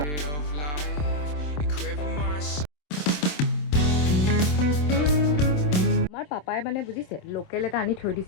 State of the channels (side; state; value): right; late; 27 ms